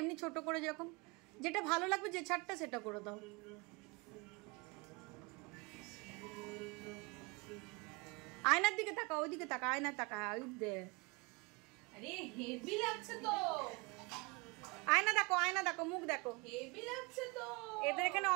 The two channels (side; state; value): left; quieter; 28.0 dB